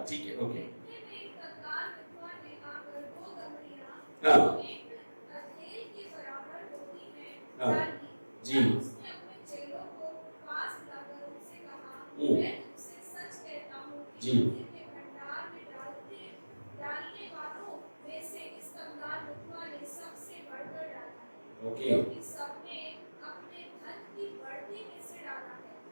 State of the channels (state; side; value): inverted; both; correlation -1.00